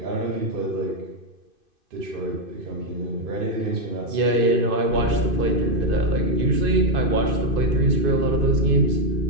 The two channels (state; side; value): late; left; 2.5 ms